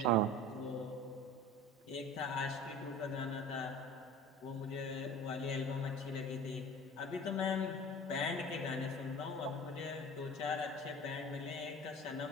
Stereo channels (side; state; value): both; normal; correlation 0.39